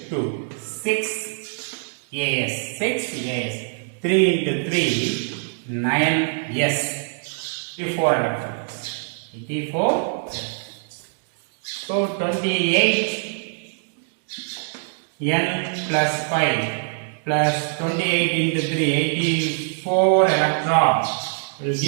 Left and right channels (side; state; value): left; silent; 63 dB below the other